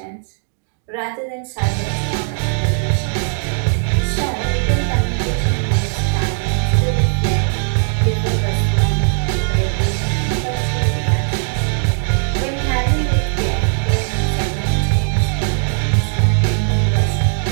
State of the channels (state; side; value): silent; left; 61 dB below the other